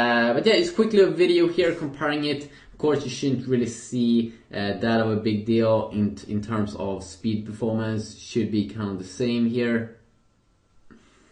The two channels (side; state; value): both; identical; correlation 1.00